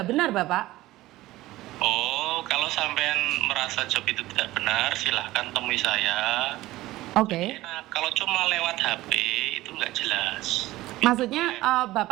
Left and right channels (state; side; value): quieter; left; 17.1 dB